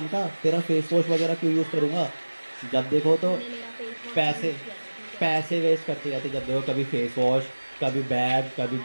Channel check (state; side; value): inverted; both; correlation -1.00